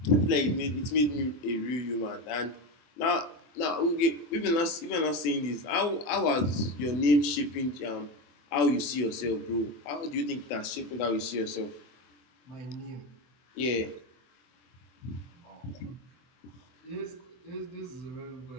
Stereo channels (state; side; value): late; right; 24 ms